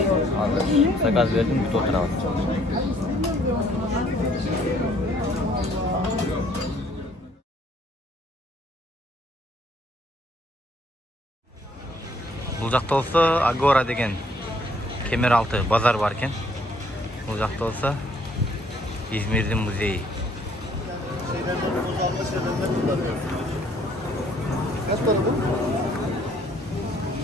Hazır. Sakaz verdim, bir oturalım. Bu жақта olsa Agora деген Kemeraltı bazar varken, bu жақта olsa İzmir'in müzeyi.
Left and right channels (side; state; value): both; normal; correlation 0.63